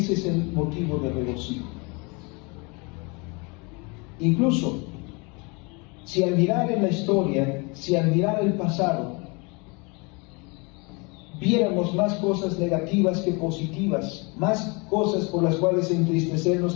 es el motivo de regocijo. Incluso, si al mirar en la historia, si al mirar el pasado, viéramos más cosas negativas que positivas, más cosas por las cuales entristecernos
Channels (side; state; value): right; quieter; 29.7 dB